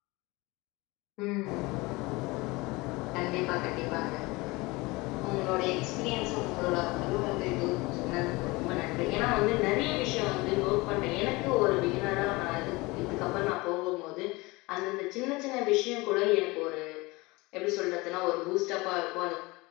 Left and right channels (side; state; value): right; quieter; 23.2 dB